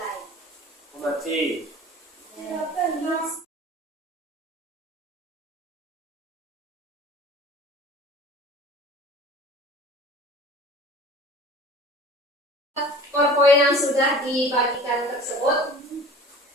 Mati. PowerPoint yang sudah dibagikan tersebut.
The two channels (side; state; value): both; normal; correlation 0.43